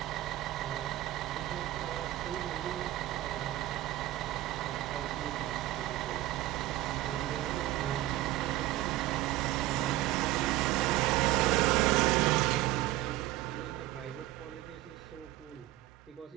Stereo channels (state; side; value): quieter; left; 15.7 dB